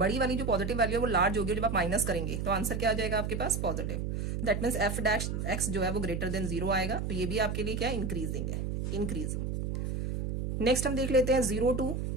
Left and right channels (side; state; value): right; noise; hum, 2 dB below the sound